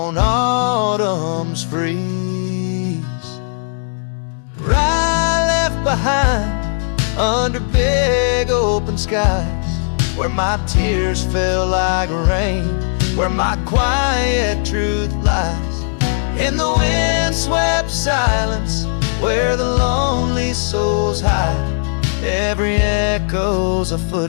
autumn's freeze. Rye left behind under big open skies, where my tears fell like rain, where my quiet truth lies. In the wind-swept silence, where the lonely souls hide, every echo's a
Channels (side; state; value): right; silent; digital silence